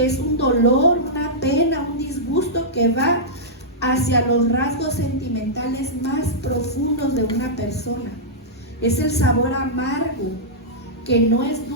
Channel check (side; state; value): both; normal; correlation -0.12